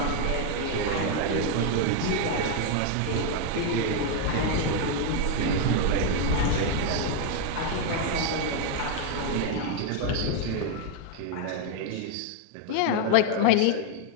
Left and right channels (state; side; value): different; both; correlation 0.01